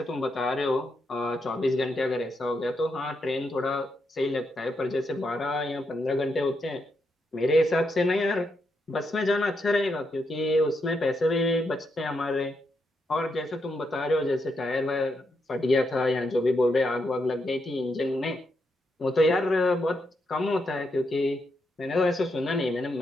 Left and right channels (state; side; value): normal; both; correlation 0.82